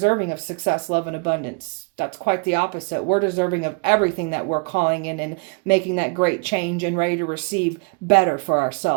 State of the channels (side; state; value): left; quieter; 34.3 dB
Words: of success, love, and abundance. That's quite the opposite. We're deserving of everything that we're calling in and making that great change and ready to receive better for